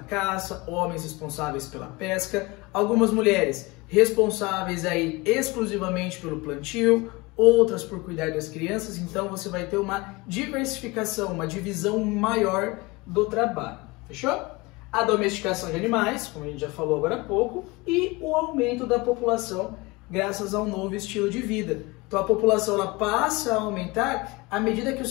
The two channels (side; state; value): right; quieter; 23.4 dB